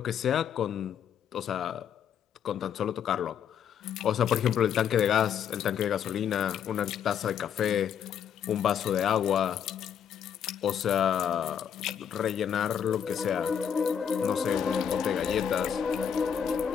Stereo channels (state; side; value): quieter; right; 8.4 dB